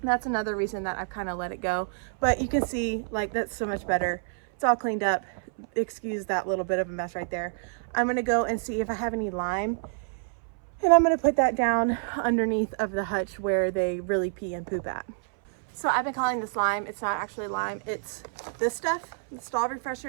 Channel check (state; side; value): silent; left; 59 dB below the other